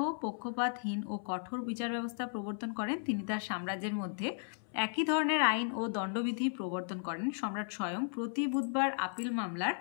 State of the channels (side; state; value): right; silent; 54 dB below the other